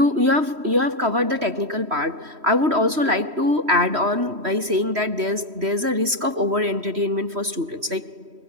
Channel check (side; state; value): left; late; 3.1 ms